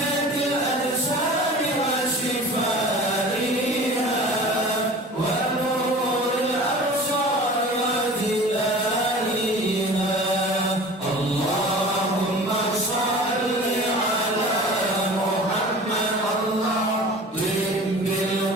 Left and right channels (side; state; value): both; normal; correlation 0.40